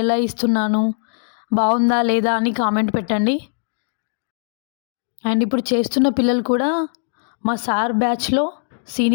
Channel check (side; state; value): right; silent; digital silence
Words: ఇస్తున్నాను, బాగుందా లేదా అని కామెంట్ పెట్టండి. అండ్ ఇప్పుడు చేస్తున్న పిల్లలు కూడా మా సార్ బ్యాచ్లో